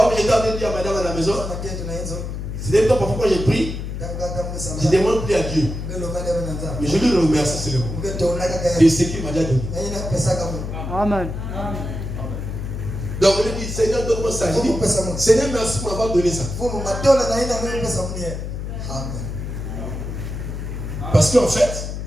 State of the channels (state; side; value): noise; left; hum, 6 dB below the sound